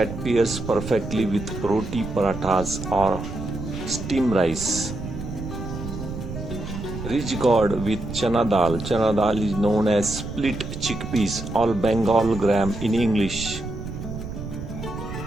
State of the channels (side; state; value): right; noise; rumble, 8 dB below the sound